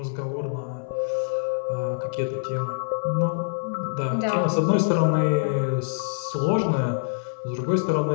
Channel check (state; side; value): silent; right; digital silence